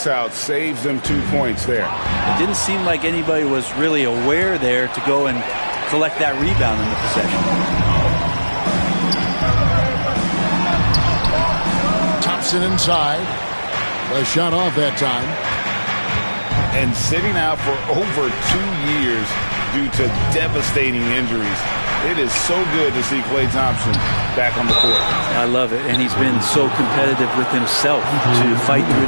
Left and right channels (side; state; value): both; inverted; correlation -1.00